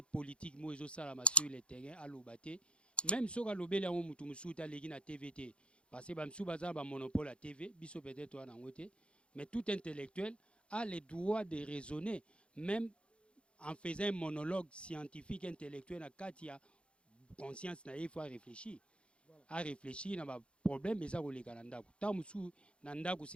politique mo ezo sala sur le terrain à l'obate, même so ka lobele ya mutu musuta legi na TVT parce que ba msu baza ba monopole à TV, biso peut-être wana ngote, mais tout intellectuel a le droit de raisonner, même en faisant un monologue scientifique, intellectuel, il y a conscience, il faut réfléchir. Voilà. À réfléchir, il y a un problème, mais ça,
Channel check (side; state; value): right; late; 0.058 ms